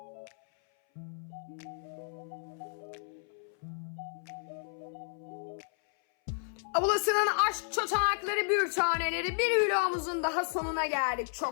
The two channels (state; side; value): silent; right; 56 dB below the other